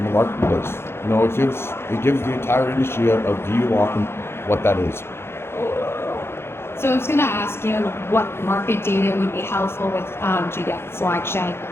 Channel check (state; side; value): late; right; 0.12 ms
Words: the marketplace. You know, it gives the entire industry a view on what that is. So I was going to ask you what market data would be helpful with genetic selection.